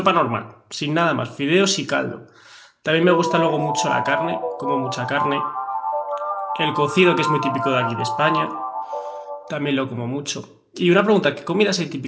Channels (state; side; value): identical; both; correlation 1.00